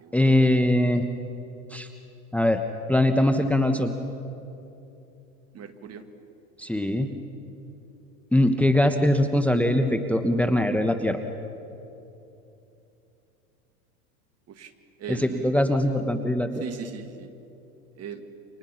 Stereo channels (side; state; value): both; normal; correlation 0.85